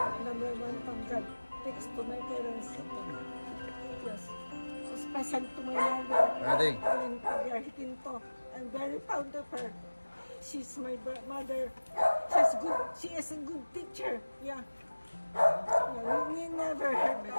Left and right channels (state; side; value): inverted; both; correlation -1.00